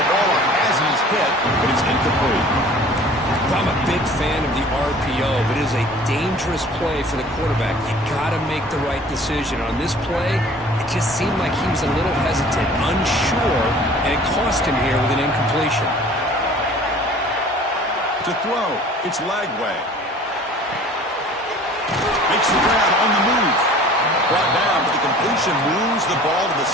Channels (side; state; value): both; normal; correlation 0.48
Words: ball up as he's hit, but it's incomplete. I'm a big fan of the RPO, but it is a dangerous play for the quarterback. You got to make the right decision. On this play, it just seemed like he was a little hesitant, unsure, and it cost him here with an incompletion. To throw, it's Lagway. Makes the grab on the move. Brought down, but the completion moves the ball to the